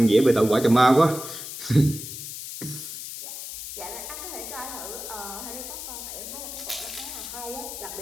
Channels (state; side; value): noise; left; hiss, 9 dB below the sound